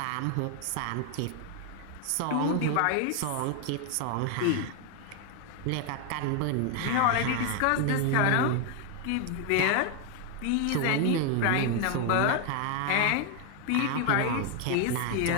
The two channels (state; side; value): different; both; correlation 0.01